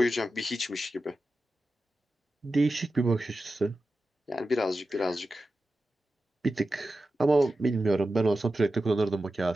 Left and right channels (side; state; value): both; normal; correlation 0.93